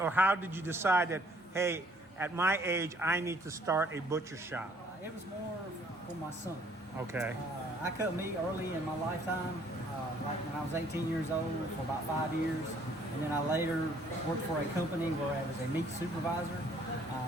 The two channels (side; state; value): both; normal; correlation 0.61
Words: or how did you decide that, hey, at my age, I need to start a butcher shop? It was more for my son. Okay. I cut meat early in my lifetime, like when I was 18 years old for about 5 years. And then I later worked for a company where I was a meat supervisor.